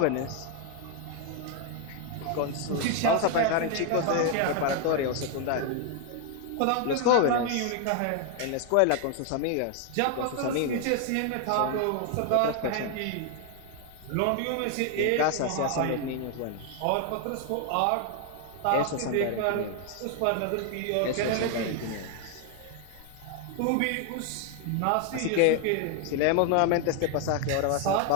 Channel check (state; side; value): different; both; correlation 0.00